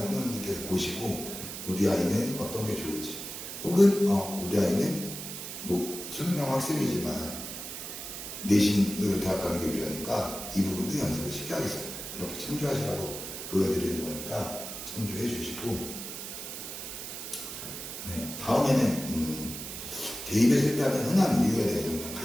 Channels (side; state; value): right; noise; hiss, 8 dB below the sound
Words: 보시고 우리 아이는 어떤 게 좋을지 혹은 우리 아이는 수능형 학생이지만 내신으로 대학 가는 게 유리하니까 이 부분도 연습을 쉽게 하겠어요. 이렇게 참조하시라고 보여드리는 거니까 참조해 주시고 다음에는 대입에 실패하는 흔한 이유에 대해서 그냥